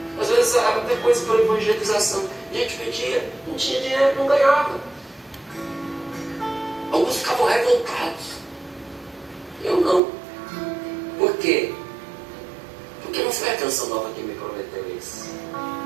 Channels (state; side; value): drops out; left; at 10.0 s